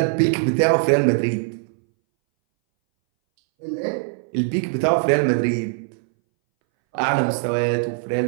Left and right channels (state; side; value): silent; left; 62 dB below the other